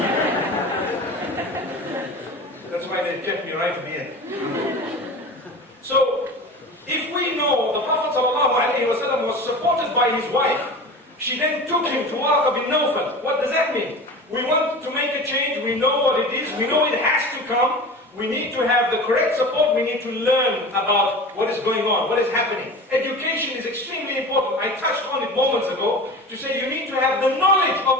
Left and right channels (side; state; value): both; normal; correlation 0.34